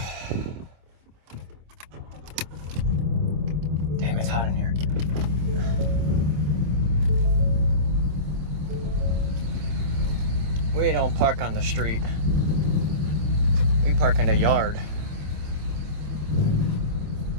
Damn, it's hot in here. We don't park on the street. We park in the yard.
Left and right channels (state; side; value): late; left; 26 ms